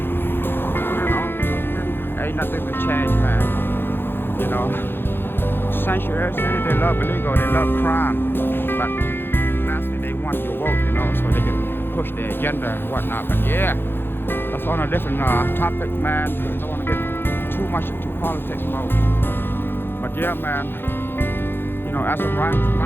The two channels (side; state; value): right; late; 0.10 ms